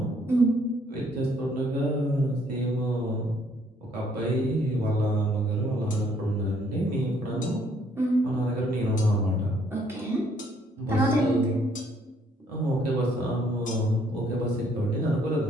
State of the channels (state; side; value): normal; both; correlation 0.65